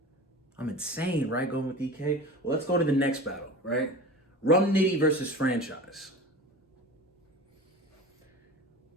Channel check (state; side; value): normal; both; correlation 0.34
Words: I'm insane, right? Going with EK. Well, let's go to the next battle, right? Rum Nitty versus Franchise.